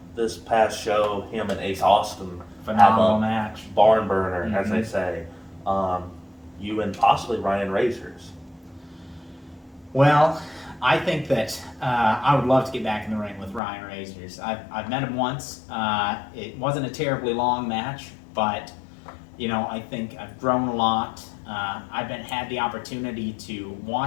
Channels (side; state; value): right; drops out; at 13.6 s